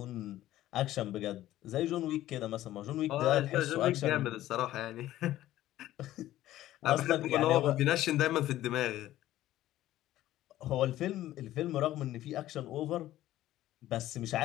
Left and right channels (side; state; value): right; quieter; 14.3 dB